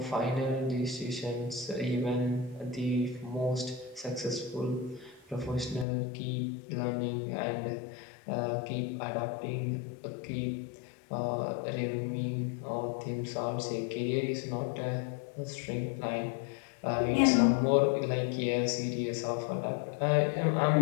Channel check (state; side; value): drops out; right; at 5.9 s